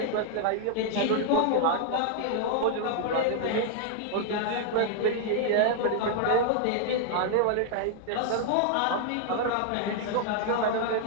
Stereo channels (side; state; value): both; different; correlation 0.00